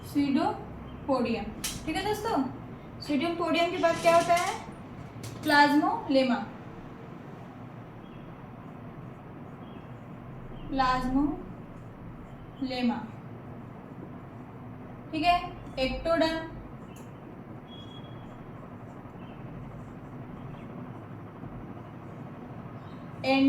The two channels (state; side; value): identical; both; correlation 1.00